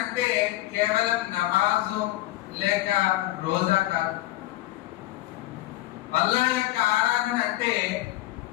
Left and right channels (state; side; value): quieter; right; 16.8 dB